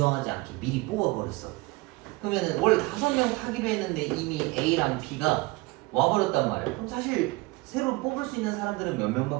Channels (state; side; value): quieter; left; 22.8 dB